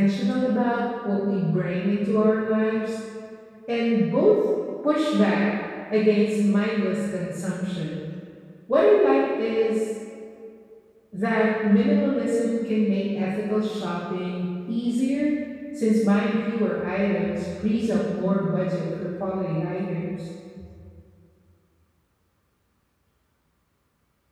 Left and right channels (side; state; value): both; identical; correlation 1.00